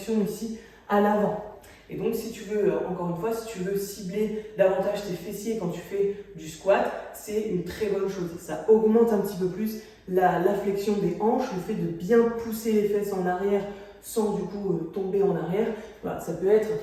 ici à l'avant. Et donc si tu veux, encore une fois, si tu veux cibler davantage tes fessiers quand tu fais du squat, c'est une très bonne chose. Ça augmente un petit peu plus la flexion des hanches, le fait de bien pousser les fesses en arrière sans du coup tomber en arrière. Voilà, ça peut être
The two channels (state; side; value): identical; both; correlation 1.00